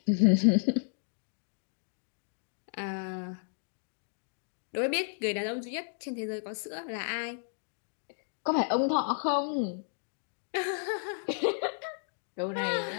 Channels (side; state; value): right; silent; digital silence